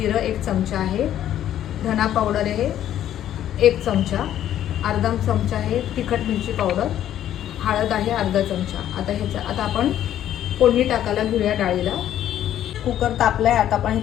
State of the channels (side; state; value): right; quieter; 11.4 dB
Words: 1 चमचा आहे, धना पावडर आहे 1 चमचा, अर्धा चमचा आहे तिखट मिरची पावडर, हळद आहे अर्धा चमचा। आता आपण फोडणी टाकायला घेऊया डाळीला। कुकर तापलाय, आता आपण